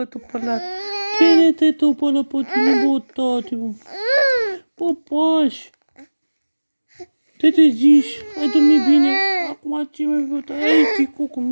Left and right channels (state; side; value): inverted; both; correlation -1.00